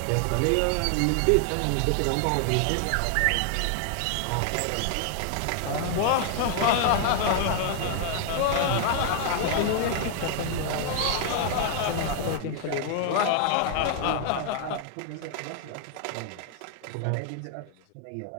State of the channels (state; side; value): different; both; correlation 0.00